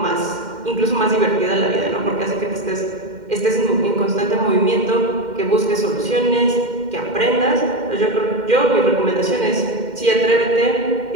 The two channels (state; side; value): late; left; 2.1 ms